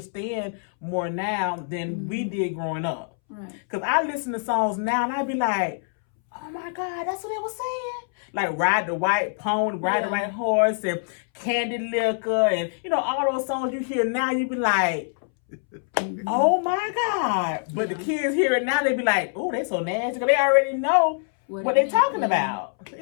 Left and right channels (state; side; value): silent; right; 62 dB below the other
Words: more now than we did growing up. Right. Cause I listen to songs now and I be like, oh my God, that's what they was saying. Like Ride the White Pony, Ride the White Horse, and Candy Liquor, and you know, all those songs you hear now, you be like, oh my God. But the kids hear it now, they be like, oh, they so nasty. Cause they already know what they talking about.